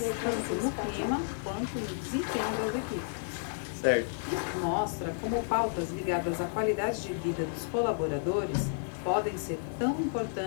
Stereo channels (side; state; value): right; silent; digital silence